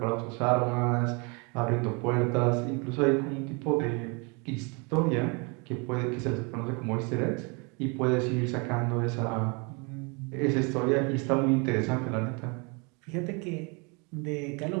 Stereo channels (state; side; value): quieter; left; 31.6 dB